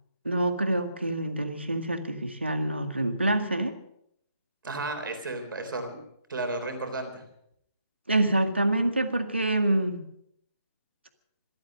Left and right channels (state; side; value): inverted; both; correlation -0.77